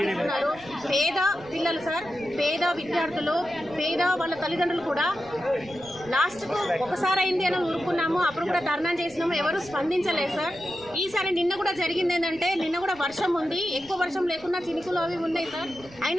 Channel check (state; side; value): noise; right; rumble, 23 dB below the sound